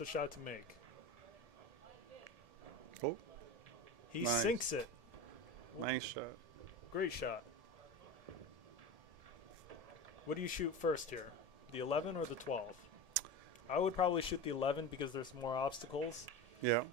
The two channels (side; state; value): left; late; 1.7 ms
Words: shot to make. Oh, He Nice. sinks it. nice shot. Great shot. What do you shoot first here? The 11 or the 12? I would probably shoot the 11 because there's more obstacles. Yeah.